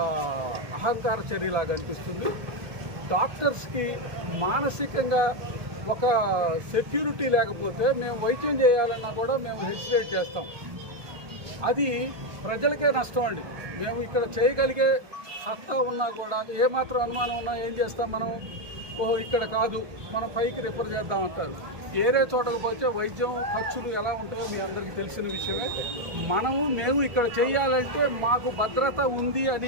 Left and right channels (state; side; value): late; left; 1.4 ms